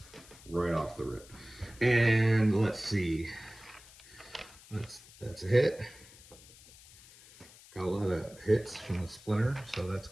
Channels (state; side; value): noise; left; hiss, 22 dB below the sound